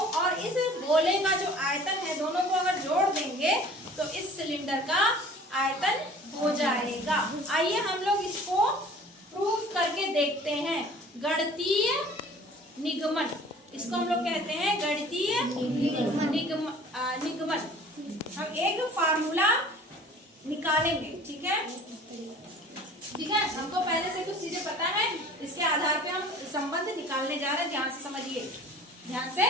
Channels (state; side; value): normal; both; correlation 0.47